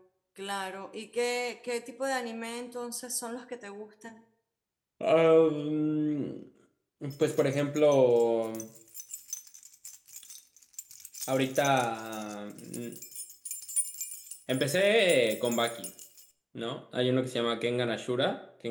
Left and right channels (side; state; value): both; identical; correlation 1.00